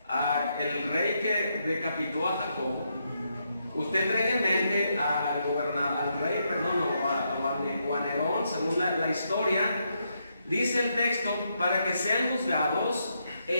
al rey que decapitó a Jacob. Usted trae en mente al rey, o a Nerón, según la historia. Dice el texto, para que sean juzgados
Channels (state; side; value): inverted; both; correlation -0.80